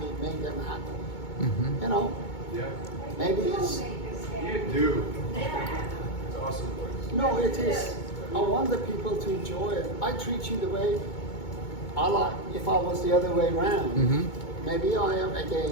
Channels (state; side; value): late; right; 2.2 ms